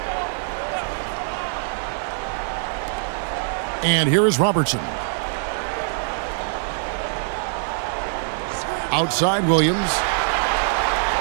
And here is Robertson. Outside Williams.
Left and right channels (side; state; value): left; silent; 63 dB below the other